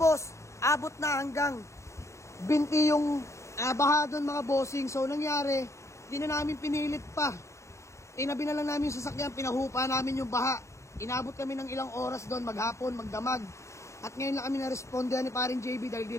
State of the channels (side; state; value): right; late; 0.14 ms